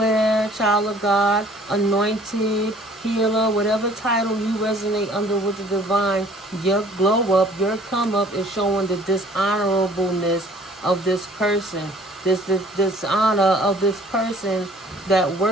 child of God, anointed, healer, whatever title you resonate under with the divine, your glow up, your come up is showing the dishonorableness of this person. This dishonor of this person that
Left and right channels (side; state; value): both; normal; correlation 0.54